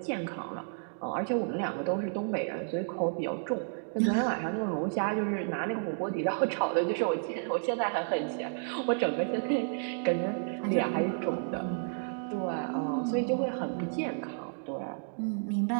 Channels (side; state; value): left; silent; digital silence